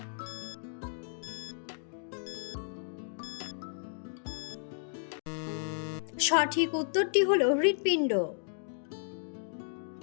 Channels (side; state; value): right; silent; digital silence